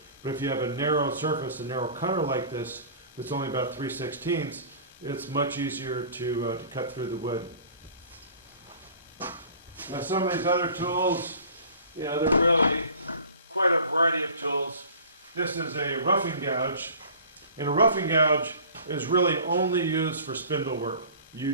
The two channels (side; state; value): both; inverted; correlation -0.44